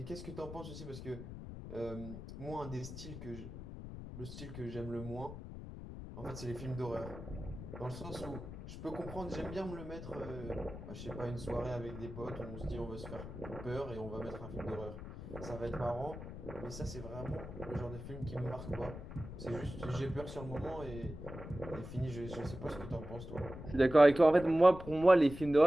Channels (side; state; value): left; noise; rumble, 10 dB below the sound